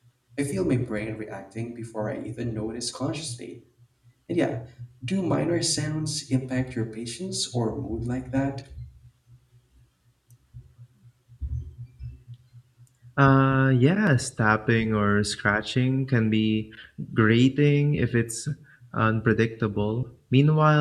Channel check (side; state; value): both; identical; correlation 1.00